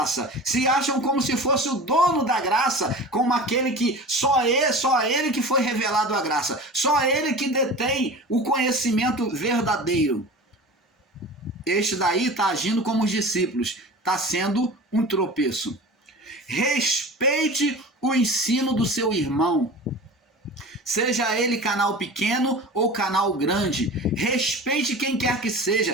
se acham como se fosse o dono da graça, como aquele que só ele que foi revelado a graça, só ele que detém o conhecimento verdadeiro. Este daí está agindo como os discípulos, está sendo um tropeço. Respeite o ensino do seu irmão, seja ele canal pequeno ou canal grande. Respeite quem quer que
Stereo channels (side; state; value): both; normal; correlation 0.35